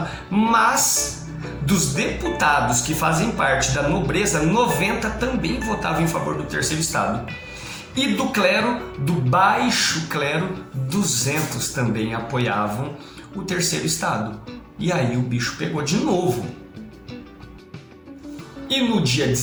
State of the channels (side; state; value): both; identical; correlation 1.00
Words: Mas dos deputados que fazem parte da nobreza, 90 também votavam em favor do terceiro estado. E do clero, do baixo clero, 200 também apoiavam o terceiro estado. E aí o bicho pegou de novo. E no dia